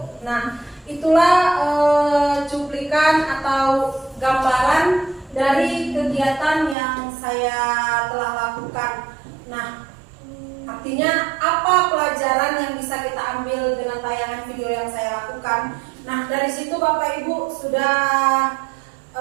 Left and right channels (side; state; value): left; drops out; at 6.8 s